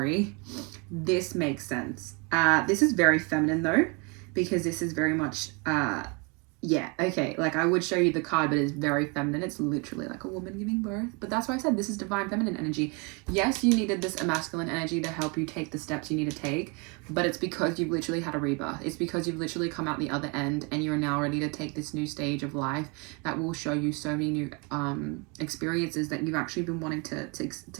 This makes sense. This is very feminine though, because this is very much yeah, okay, like I would show you the card, but it's very feminine. It's literally like a woman giving birth. But that's why I said this is divine feminine energy. Yes, you needed this masculine energy to help you take the steps you need to take, but it's because you've literally had a rebirth. It's because you've literally come out the other end, and you're now ready to take this new stage of life that will show you so many new experiences that you've actually been wanting to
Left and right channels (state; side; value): quieter; left; 31.5 dB